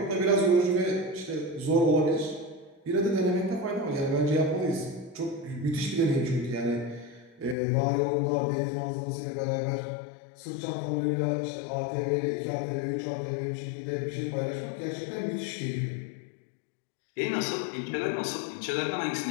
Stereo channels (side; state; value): right; drops out; at 7.6 s